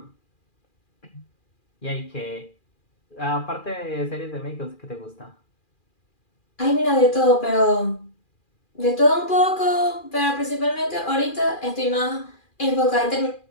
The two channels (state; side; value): late; right; 2.4 ms